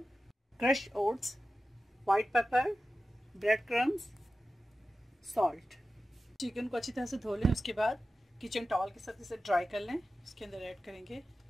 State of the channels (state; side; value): normal; both; correlation 0.93